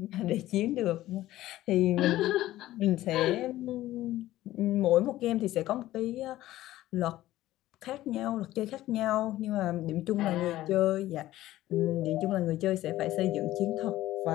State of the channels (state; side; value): quieter; right; 15.2 dB